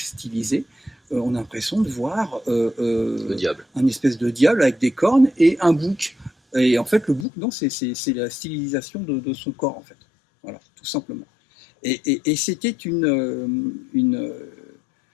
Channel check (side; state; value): right; drops out; at 7.2 s